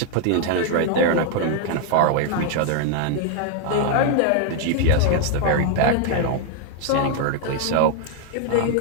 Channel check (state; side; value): different; both; correlation 0.00